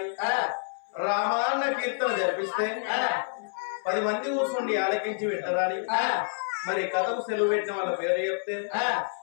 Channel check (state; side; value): silent; right; 59 dB below the other